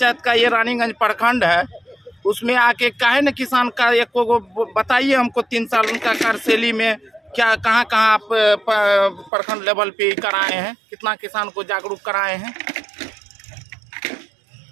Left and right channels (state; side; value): drops out; left; at 9.3 s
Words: का ये रानीगंज प्रखंड है, उसमें आके काहे न किसान का एक को बताइए हमको 3 साल उनका कार्यशैली में क्या कहाँ आप प्रखंड लेवल पे कराए हैं, कितना किसान को जागरूक कराए हैं।